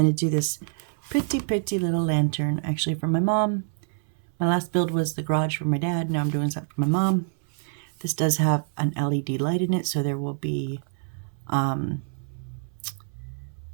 to do this pretty little lantern actually for my mom. My last build was the garage for my dad. Now I'm doing something for my mom. This does have an LED light in it, so there will be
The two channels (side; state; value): left; silent; 61 dB below the other